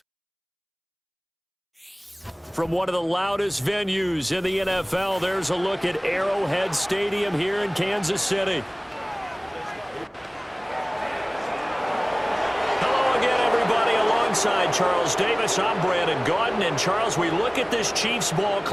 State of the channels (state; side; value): identical; both; correlation 1.00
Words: From one of the loudest venues in the NFL, there's a look at Arrowhead Stadium here in Kansas City. Hello again, everybody. Alongside Charles Davis, I'm Brandon Gaudin. And Charles, we look at this Chiefs ball